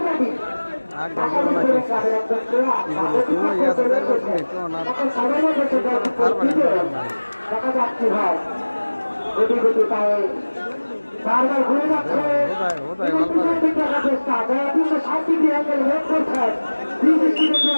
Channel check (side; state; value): both; inverted; correlation -1.00